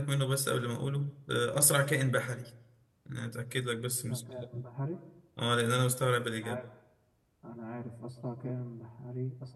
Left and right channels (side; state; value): both; identical; correlation 1.00